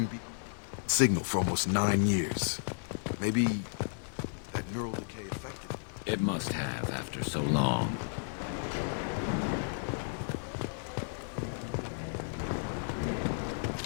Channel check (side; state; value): right; silent; 56 dB below the other